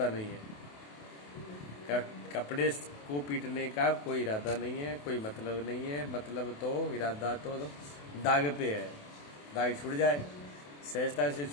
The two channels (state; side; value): late; right; 28 ms